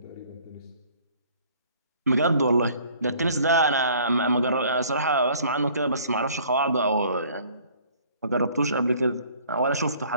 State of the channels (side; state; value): both; inverted; correlation -0.55